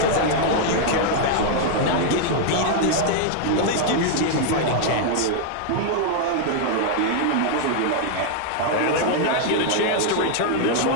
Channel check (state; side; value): different; both; correlation 0.00